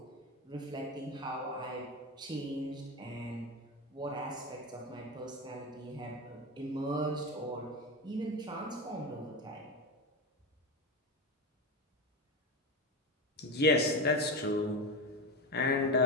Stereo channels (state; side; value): normal; both; correlation 0.18